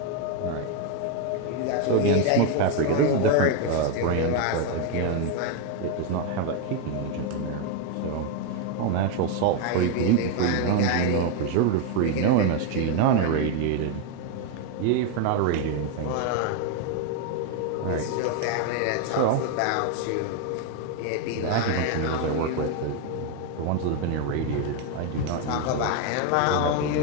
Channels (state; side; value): different; both; correlation 0.01